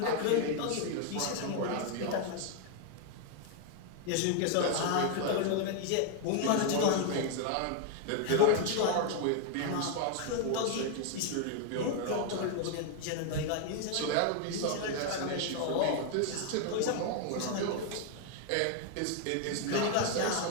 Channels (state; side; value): different; both; correlation 0.00